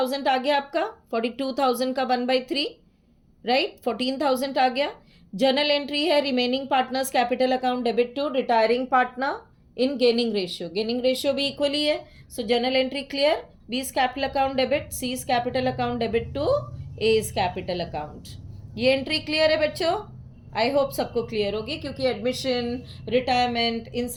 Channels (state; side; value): identical; both; correlation 1.00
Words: आ गया आपका, 42,000 का 1/3, राइट, 14,000 आ गया। जर्नल एंट्री है remaining partners capital account debit to retiring partner in gaining ratio भी इक्वली है। So journal entry clear, B is capital account debit, C is capital account debit to A is capital account. ये एंट्री क्लियर है बच्चों? आई होप सबको क्लियर होगी, क्योंकि एडमिशन, रिटायरमेंट, इन